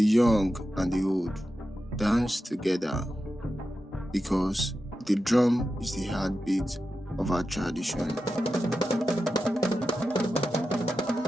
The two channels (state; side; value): normal; both; correlation 0.91